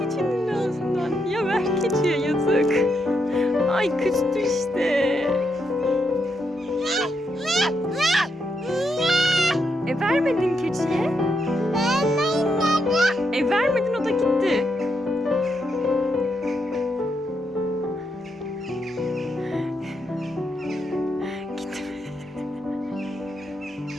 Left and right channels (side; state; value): both; normal; correlation 0.81